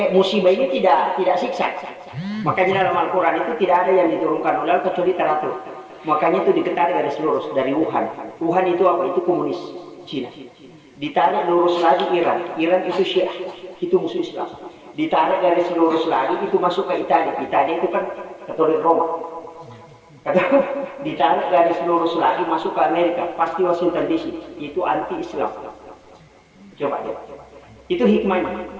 musibah ini tidak siksa makanya dalam Al-Quran itu tidak ada yang diturunkan oleh kecuali teratur. Makanya itu ditarik garis lurus dari Wuhan. Wuhan itu apa? Itu komunis Cina. Ditarik lurus lagi Iran. Iran itu Syiah, itu musuh Islam. Ditarik garis lurus lagi itu masuk ke Italia. Italia itu kan Katolik Roma. Ditarik garis lurus lagi masuk ke Amerika, pasti Washington DC. Itu anti Islam. Coba deh. Itu hikmahnya.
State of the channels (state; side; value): identical; both; correlation 1.00